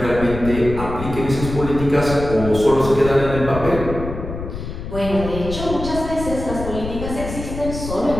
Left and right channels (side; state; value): left; noise; rumble, 8 dB below the sound